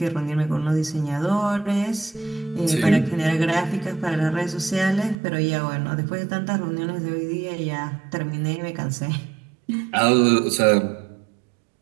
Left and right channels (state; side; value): drops out; left; at 5.2 s